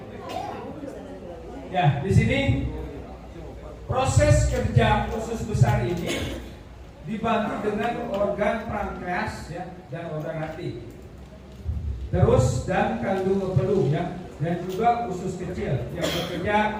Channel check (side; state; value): both; identical; correlation 1.00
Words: ya di sini proses kerja usus besar ini dibantu dengan organ pankreas ya dan organ hati. Terus dan kandung peluh ya dan juga usus kecil yang